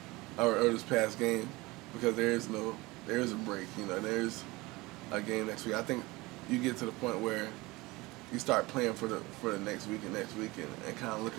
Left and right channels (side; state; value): left; quieter; 22.0 dB